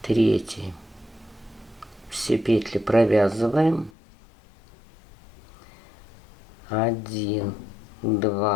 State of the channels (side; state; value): right; drops out; at 3.9 s